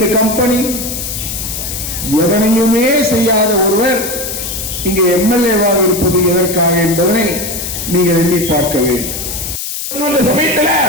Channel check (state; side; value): noise; left; hiss, 6 dB below the sound